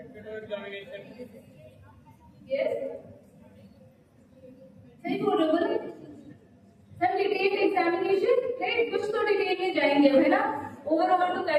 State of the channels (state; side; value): identical; both; correlation 1.00